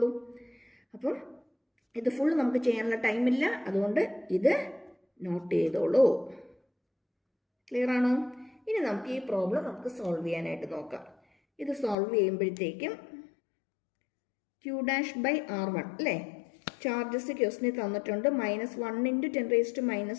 അപ്പം ഇത് ഫുൾ നമുക്ക് ചെയ്യാനുള്ള ടൈമില്ല, അതുകൊണ്ട് ഇത് നോട്ട് ചെയ്തോളൂ. ക്ലിയർ ആണോ? ഇനി നമുക്ക് ഈ പ്രോബ്ലം നമുക്ക് സോൾവ് ചെയ്യാനായിട്ട് നോക്കാം. ഇത് സോൾവ് ചെയ്യുമ്പോഴത്തേക്കും ക്യൂ ഡാഷ് ബൈ R1 അല്ലേ, ചാർജസ് ക്വസ്റ്റിന് തന്നിട്ടുണ്ട്. -1 ×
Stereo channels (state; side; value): drops out; right; at 12.0 s